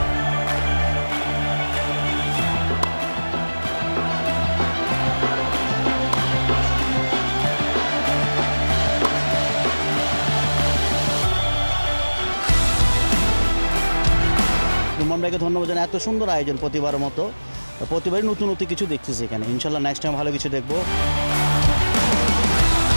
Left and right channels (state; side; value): inverted; both; correlation -1.00